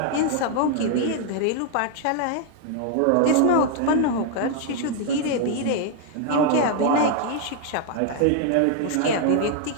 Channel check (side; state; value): both; different; correlation 0.00